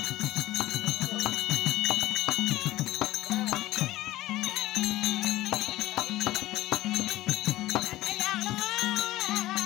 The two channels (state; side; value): quieter; right; 16.4 dB